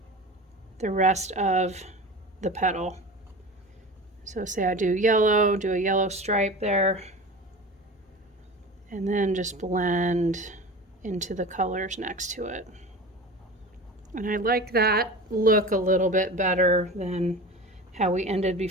the rest of the petal. So say I do a yellow stripe there, and then just blend into the colors next to it. And I like that look a little bit better than how we ended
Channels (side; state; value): both; normal; correlation 0.33